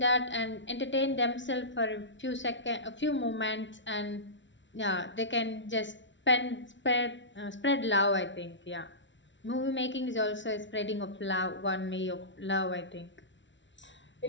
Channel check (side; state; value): right; late; 0.54 ms